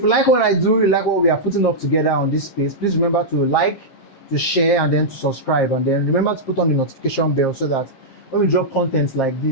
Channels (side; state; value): right; late; 7.5 ms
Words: you like what I do, you like what we are putting up together on this space, please remember to like, to share, and then to subscribe. And then remember to put on the notification bell so that when we drop content like